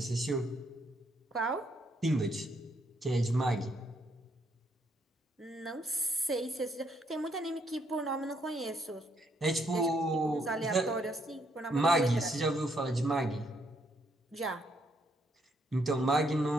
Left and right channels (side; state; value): both; normal; correlation 0.72